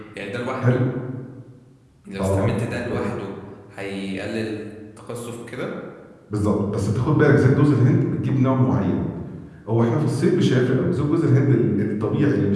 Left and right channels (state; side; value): identical; both; correlation 1.00